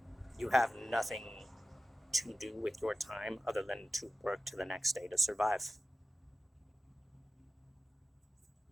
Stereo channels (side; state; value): both; normal; correlation 0.94